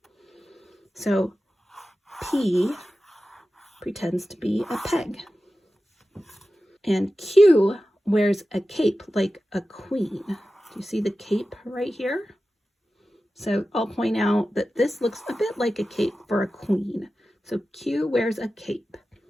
So P pretends to be a peg. And Q wears a cape like a queen. Do you see the cape right here? So I'll point out that this looks a bit like a cape for a queen. So Q wears a cape.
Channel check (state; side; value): normal; both; correlation 0.94